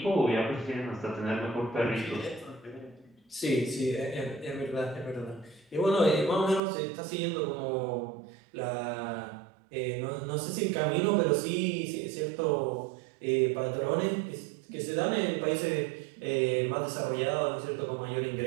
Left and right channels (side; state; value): left; drops out; at 6.6 s